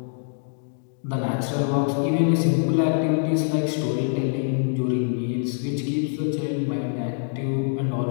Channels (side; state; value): right; silent; digital silence